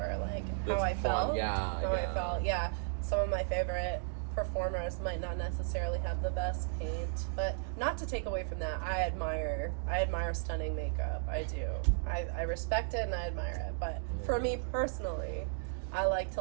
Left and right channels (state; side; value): silent; left; digital silence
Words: like how I felt. I felt. Yeah. Some of my favorite performers might not necessarily have the best paint, but not to take away from that, I admire stunning makeup. I do. I respect it and I admire it. But for me personally, I like to